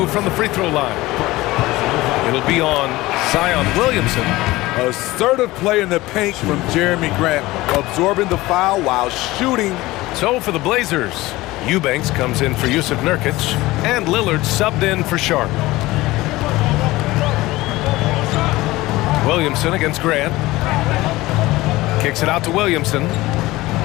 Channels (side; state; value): right; quieter; 19.0 dB